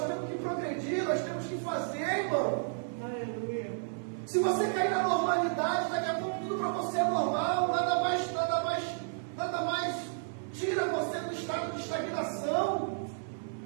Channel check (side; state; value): left; silent; 56 dB below the other